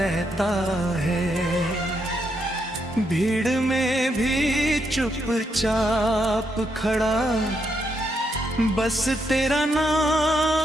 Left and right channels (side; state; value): both; normal; correlation 0.79